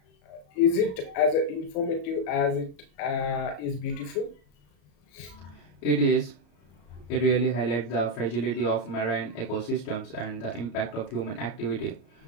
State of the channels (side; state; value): right; late; 34 ms